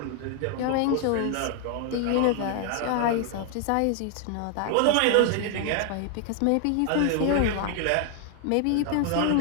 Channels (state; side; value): different; both; correlation 0.00